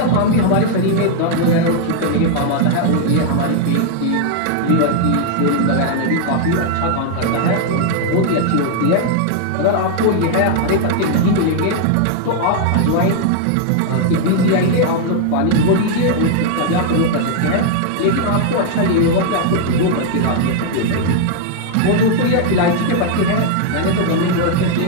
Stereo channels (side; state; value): both; different; correlation 0.00